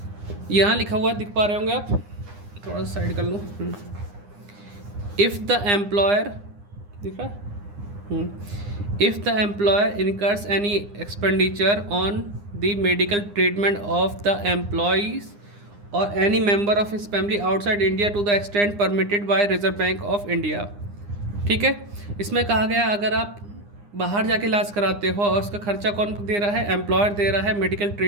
यहाँ लिखा हुआ है, दिख पा रहे होंगे आप, थोड़ा सा साइड कर लो। इफ़ द एम्प्लॉयर, दिख रहा है, if the employer incurs any expenditure on the medical treatment of the employees और any member of his family outside India to the extent permitted by Reserve Bank of India. ठीक है। इसमें कहा गया अगर आप बाहर जाके इलाज कराते हो और उसका खर्चा कौन दे रहा है, एम्प्लॉयर दे रहा है मेडिकल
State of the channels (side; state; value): left; late; 9.8 ms